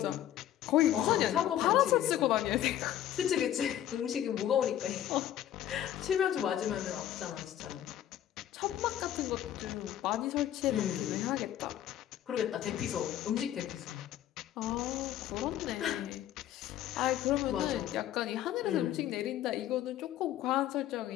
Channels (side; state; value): right; quieter; 11.8 dB